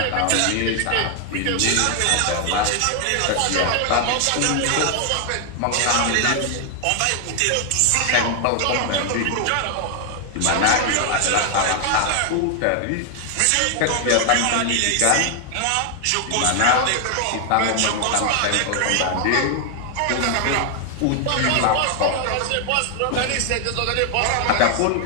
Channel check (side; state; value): both; different; correlation 0.00